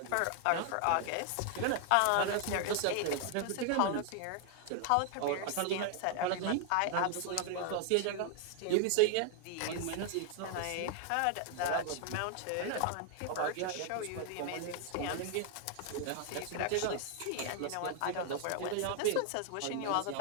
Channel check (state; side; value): different; both; correlation 0.00